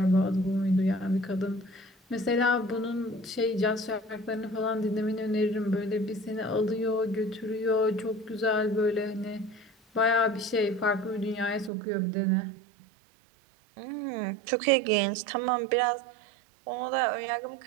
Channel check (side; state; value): left; drops out; at 11.7 s